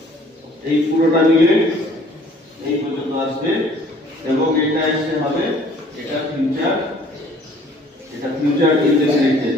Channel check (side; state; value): both; normal; correlation 0.56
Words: এই পুরোটা মিলে এই পর্যন্ত আসবে, এবং এটা এসে হবে এটা ফিউচার এটা ফিউচার ইনডেফিনিট